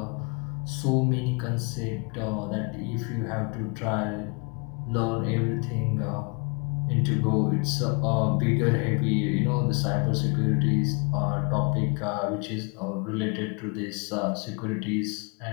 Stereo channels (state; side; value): quieter; right; 33.5 dB